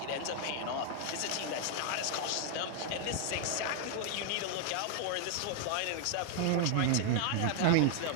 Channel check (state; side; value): different; both; correlation 0.00